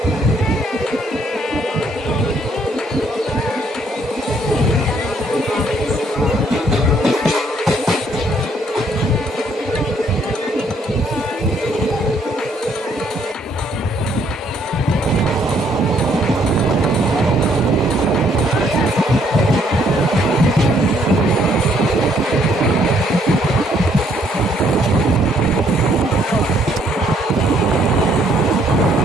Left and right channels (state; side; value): normal; both; correlation 0.67